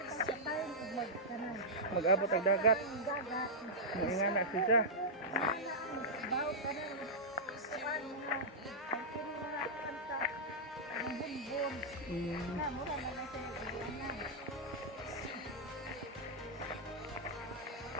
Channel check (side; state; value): both; normal; correlation -0.09